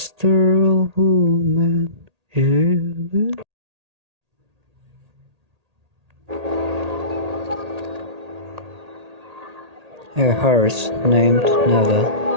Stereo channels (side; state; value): left; late; 1.8 ms